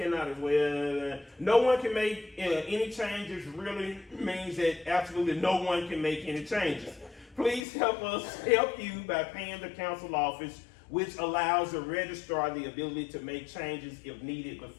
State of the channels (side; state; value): right; drops out; at 7.7 s